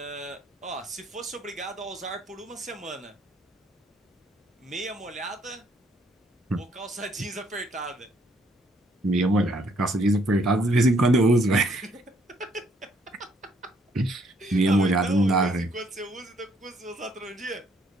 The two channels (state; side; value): normal; both; correlation 0.67